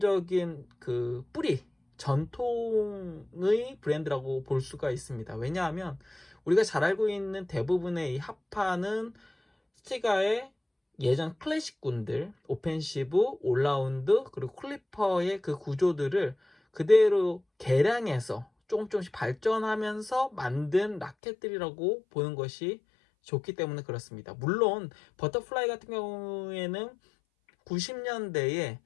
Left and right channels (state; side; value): drops out; right; at 21.2 s